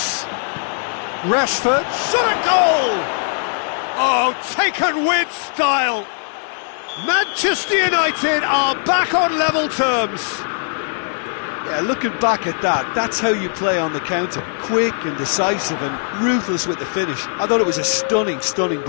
Rashford. Shot a goal! Oh, taken with style! Manchester United are back on level terms. Yeah, looking back at that, that's how you play on the counter. Quick and decisive and ruthless with the finish. I thought it was a stunning, stunning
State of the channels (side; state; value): right; silent; digital silence